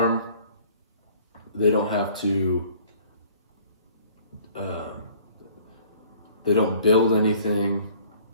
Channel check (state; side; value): inverted; both; correlation -0.54